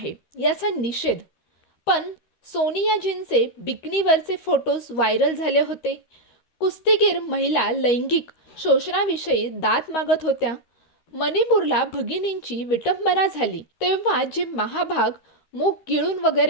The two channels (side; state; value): right; late; 13 ms